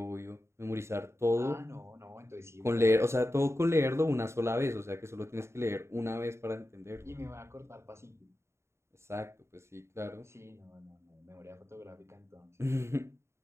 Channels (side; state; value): left; late; 0.13 ms